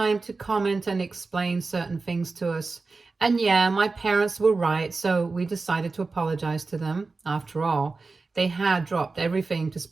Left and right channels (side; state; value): left; quieter; 3.9 dB